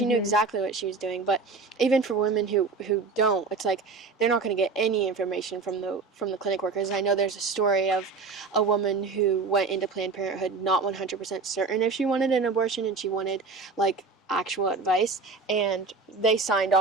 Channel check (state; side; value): quieter; left; 4.4 dB